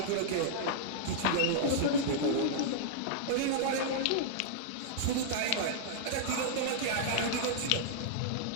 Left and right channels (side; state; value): both; different; correlation -0.02